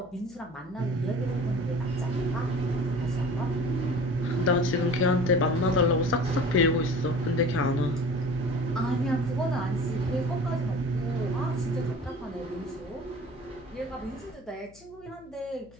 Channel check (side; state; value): left; noise; hum, 25 dB below the sound